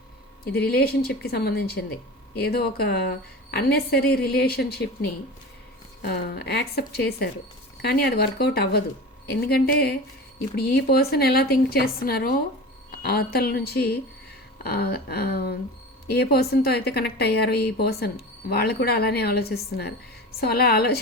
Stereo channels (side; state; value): both; normal; correlation 0.32